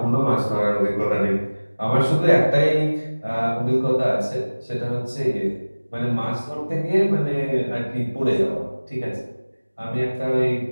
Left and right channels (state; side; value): inverted; both; correlation -1.00